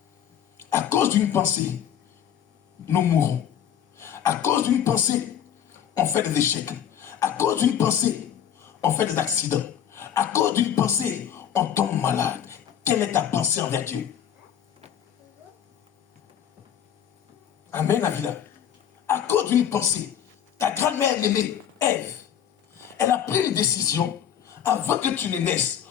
nous mourrons. À cause d'une pensée, on fait des échecs. À cause d'une pensée, on fait des accidents. À cause d'une pensée, on tombe malade. Quelle est ta pensée envers Dieu? Amen, Avila. À cause d'une pensée, ta grand-mère aimée, Ève, elle a pris une décision avant que tu ne naisses.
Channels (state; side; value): quieter; right; 9.4 dB